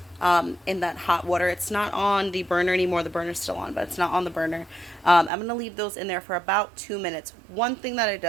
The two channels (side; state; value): left; drops out; at 5.3 s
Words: in that hot water. It's not on the burner anymore. The burner's still on, but it's not on the burner. I'm going to leave those in there for about 2 minutes. One thing that it